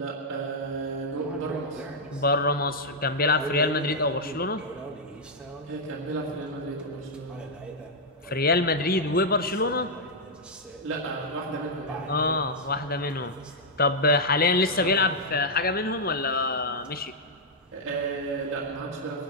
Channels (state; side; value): normal; both; correlation -0.05